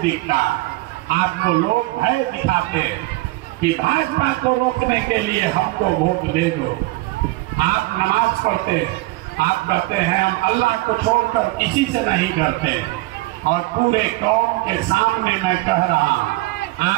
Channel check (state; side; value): quieter; left; 20.2 dB